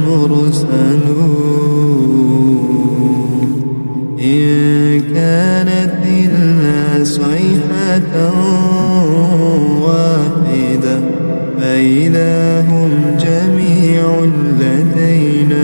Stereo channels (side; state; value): both; inverted; correlation -1.00